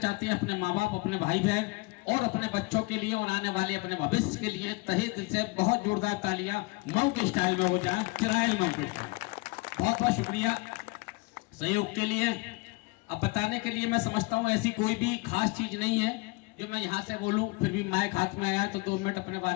हैं, अपने माँ बाप, अपने भाई बहन और अपने बच्चों के लिए और आने वाले अपने भविष्य के लिए, तहे दिल से बहुत जोरदार तालियां मऊ के स्टाइल में हो जाए, चिरायल मऊ के स्टाइल। बहुत बहुत शुक्रिया सहयोग के लिए। अब बताने के लिए मैं समझता हूँ ऐसी कोई भी खास चीज नहीं है जो मैं यहाँ से बोलूं, फिर भी माइक हाथ में आया तो 2 मिनट अपने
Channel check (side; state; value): right; quieter; 25.8 dB